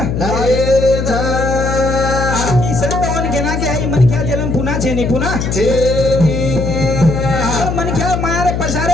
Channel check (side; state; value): left; noise; hum, 2 dB below the sound